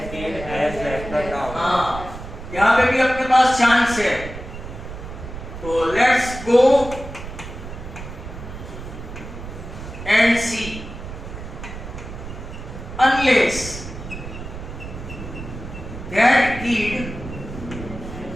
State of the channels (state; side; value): noise; right; rumble, 10 dB below the sound